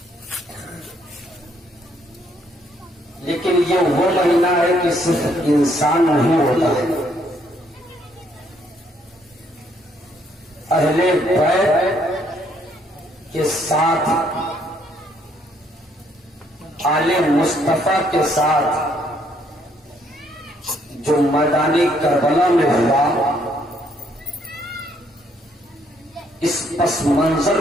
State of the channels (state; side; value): normal; both; correlation 0.69